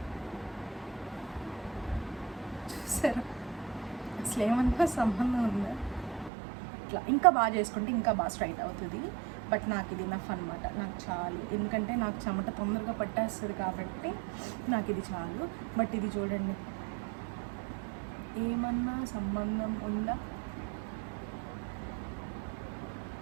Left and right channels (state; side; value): drops out; left; at 6.3 s